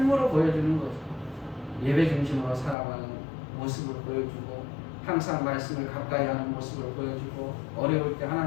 보여주는 거죠. 예배 중심으로 살아가는 모습을 보여주고, 항상 말씀을 가까이 하는 모습을 보여주고, 어려울 때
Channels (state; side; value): drops out; right; at 2.8 s